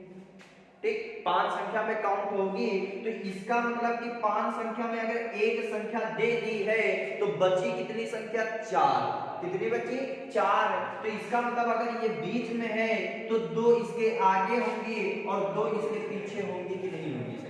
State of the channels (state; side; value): identical; both; correlation 1.00